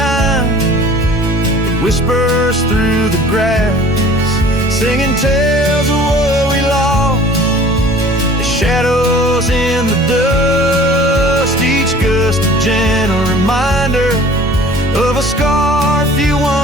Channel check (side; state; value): both; normal; correlation 0.48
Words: whispers through the grass, singing tales of what we lost, the shadows in the dust, each gust a gentle reminder of a scarf you